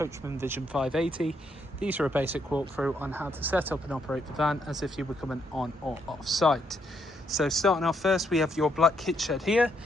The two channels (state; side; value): normal; both; correlation 0.75